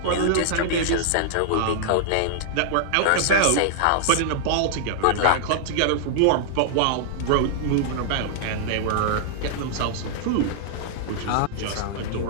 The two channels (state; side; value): different; both; correlation -0.01